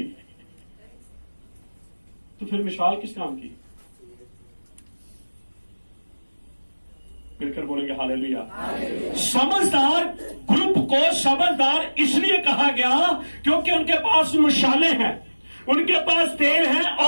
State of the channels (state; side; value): inverted; both; correlation -1.00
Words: तो फिर मिसाल किस काम की? मिलकर बोलेंगे हालेलुया। समझदार ग्रुप को समझदार इसलिए कहा गया क्योंकि उनके पास मशाले हैं, उनके पास तेल है